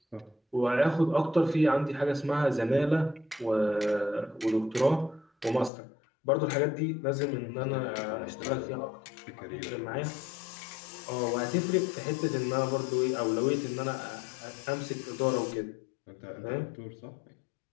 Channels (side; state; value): right; drops out; at 5.7 s